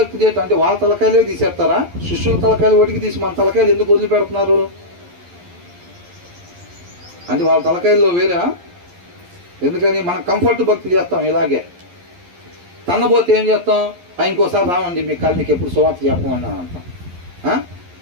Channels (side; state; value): left; late; 11 ms